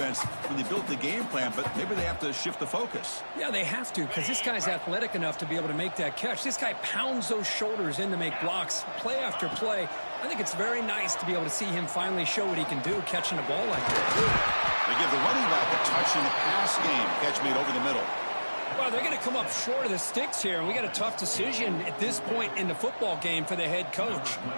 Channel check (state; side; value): inverted; both; correlation -1.00